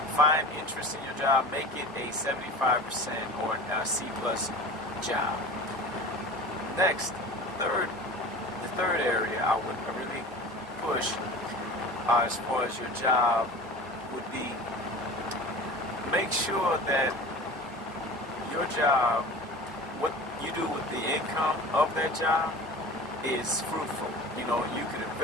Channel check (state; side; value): normal; both; correlation 0.36